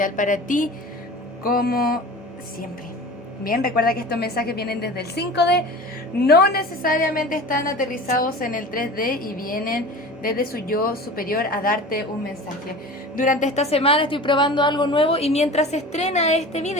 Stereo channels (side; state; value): both; normal; correlation 0.36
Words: para ti, como siempre. Bien, recuerda que estos mensajes vienen desde el 5D, no necesariamente están aterrizados en el 3D y vienen desde su yo superior a darte un mensaje. Durante esta semana estoy probando algo nuevo y mientras se estrena este